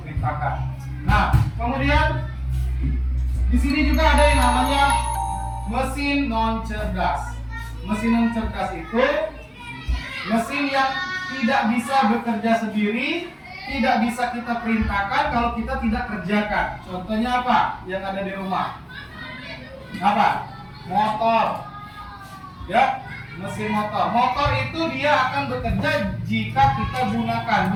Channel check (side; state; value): both; identical; correlation 1.00